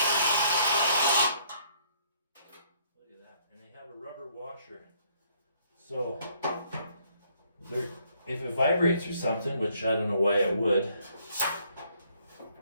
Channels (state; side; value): inverted; both; correlation -0.67